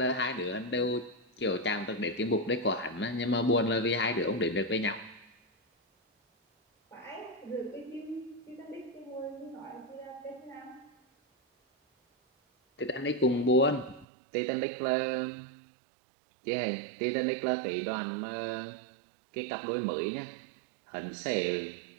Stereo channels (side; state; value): left; drops out; at 14.1 s